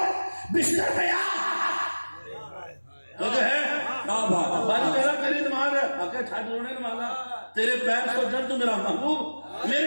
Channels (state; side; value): inverted; both; correlation -1.00